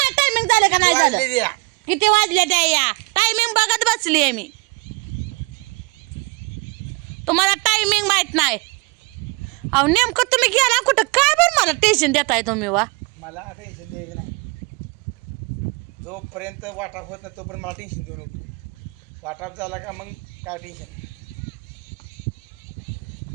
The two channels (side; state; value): left; quieter; 27.4 dB